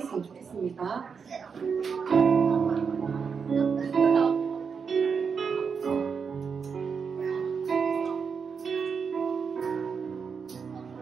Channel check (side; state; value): left; quieter; 6.0 dB